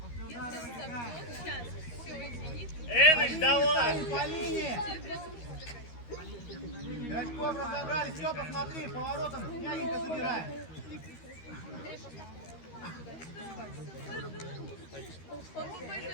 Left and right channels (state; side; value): late; right; 13 ms